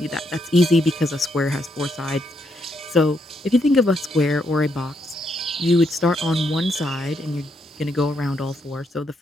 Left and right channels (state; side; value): normal; both; correlation 0.77